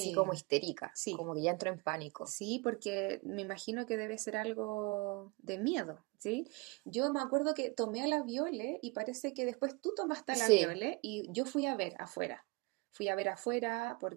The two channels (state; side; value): quieter; left; 27.3 dB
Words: Sí, como histérica, sí, como que ya entró en pánico. sí, porque me imagino que debe ser algo de miedo, ¿sí? Yo me acuerdo que tomé a la Viole y parece que después tú tomaste a la Sí, Viole y yo fui a ver afuera. Fui a ver afuera